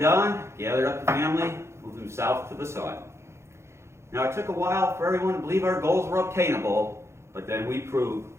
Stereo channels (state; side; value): late; left; 0.13 ms